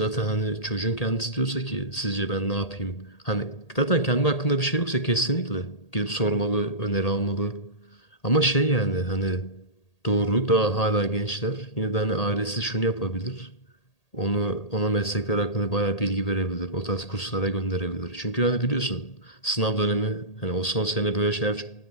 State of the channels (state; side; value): late; right; 1.8 ms